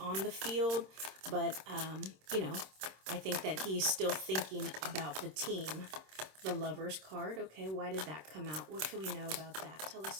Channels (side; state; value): left; late; 26 ms